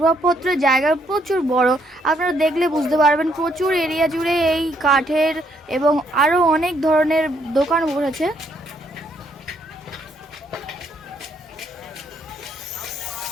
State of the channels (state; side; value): normal; both; correlation 0.71